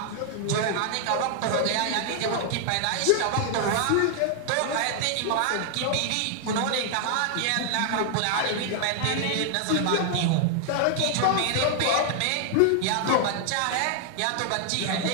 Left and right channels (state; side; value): different; both; correlation 0.00